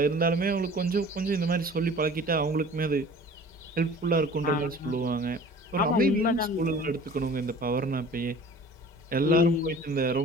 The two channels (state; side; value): normal; both; correlation 0.45